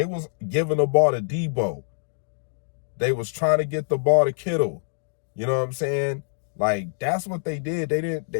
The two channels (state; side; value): silent; right; digital silence